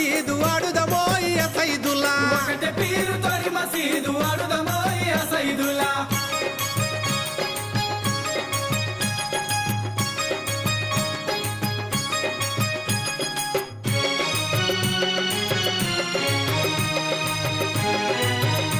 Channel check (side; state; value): both; identical; correlation 1.00